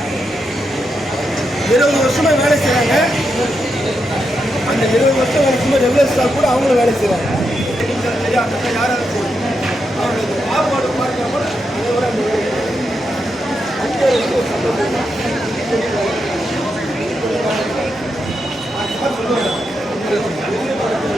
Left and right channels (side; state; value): both; normal; correlation 0.84